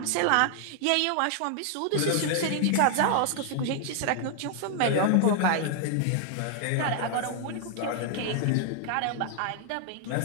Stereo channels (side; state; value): both; different; correlation 0.00